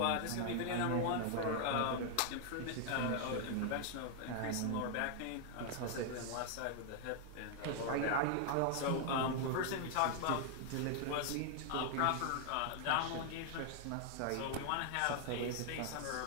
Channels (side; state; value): both; different; correlation 0.00